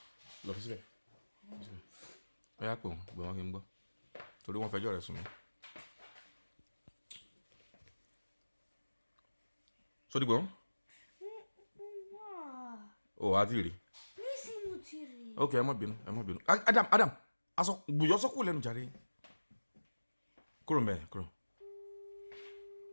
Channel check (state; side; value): inverted; both; correlation -1.00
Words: Lọ fi síbẹ̀. Ó yá pè wọ́n, gbé wọn kí n gbọ́. Torí wọ́n fẹjọ́ rẹ̀ sùn mí. Sódì gbọ́? O wá ti rí. Nísìn mo ti rí. Ok, ẹ má bínú. Adam, aṣọ gbùyọ́ sọ́kù lẹ́nu jàre. Kúrò ń bẹ̀, kúrò.